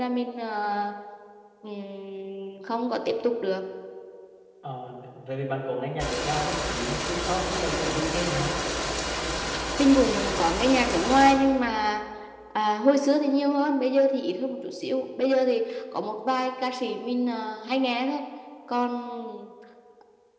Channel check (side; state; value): both; identical; correlation 1.00